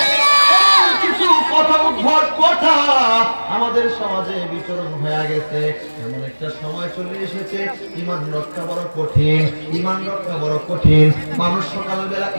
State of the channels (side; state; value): both; inverted; correlation -1.00